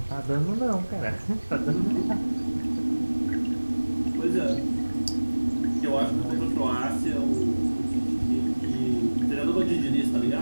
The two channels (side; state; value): both; inverted; correlation -1.00